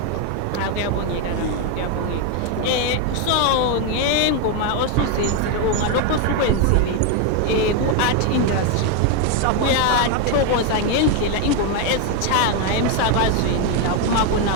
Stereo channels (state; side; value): different; both; correlation 0.01